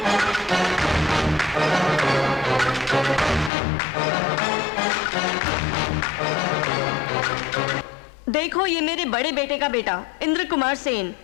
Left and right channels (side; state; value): right; drops out; at 3.5 s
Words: देखो ये मेरे बड़े बेटे का बेटा इंद्र कुमार सेन।